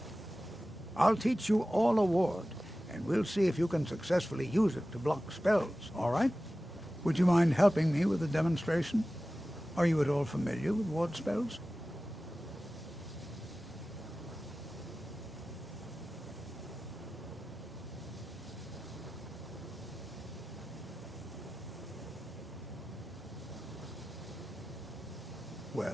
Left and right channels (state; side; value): normal; both; correlation 0.95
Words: I'll teach you all a ward, and we'll see if you can successfully use it to block spells, all right? Would you mind helping me with a demonstration? Are you at all familiar with ward spells?